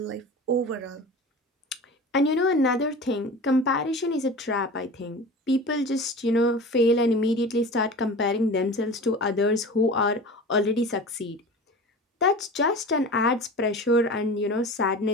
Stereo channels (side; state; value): both; normal; correlation 0.35